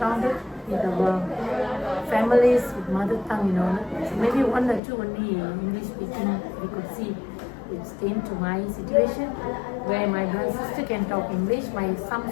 with our families with mother tongue, So maybe 1 or 2 only English speaking we could see. It came to my situation where my brother and sister can talk English,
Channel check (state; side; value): drops out; right; at 4.8 s